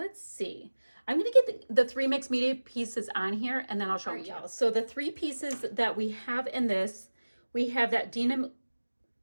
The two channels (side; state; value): both; inverted; correlation -1.00